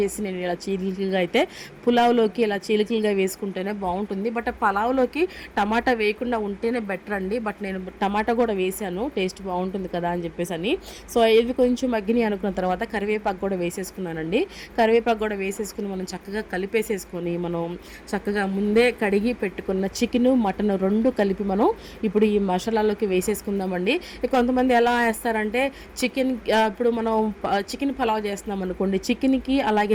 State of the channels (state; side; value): identical; both; correlation 1.00